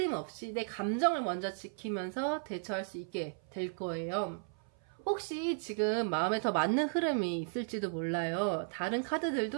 없이 내 감정을 먼저 지키면서 대처할 수 있게 될 거예요. 혹시 지금 마음에 더 맞는 흐름이 있을지도 몰라요. 다른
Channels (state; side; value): silent; left; 54 dB below the other